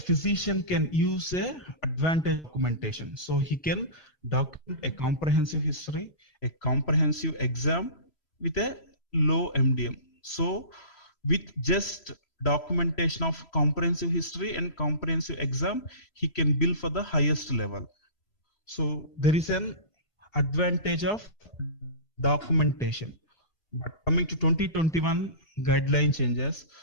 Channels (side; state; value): right; late; 3.0 ms